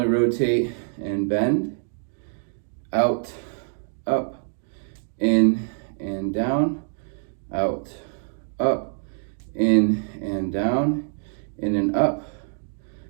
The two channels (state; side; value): silent; left; 62 dB below the other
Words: rotate and bend, out, up, in and down, out, up, in and down, in and up,